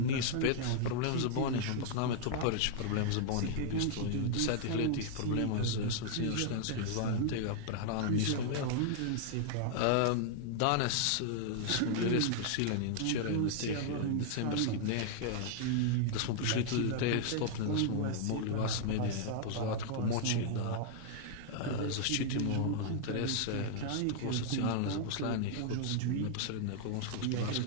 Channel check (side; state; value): both; different; correlation -0.01